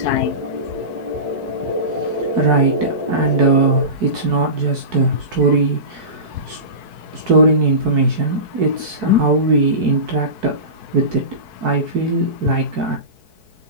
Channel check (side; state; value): left; late; 4.6 ms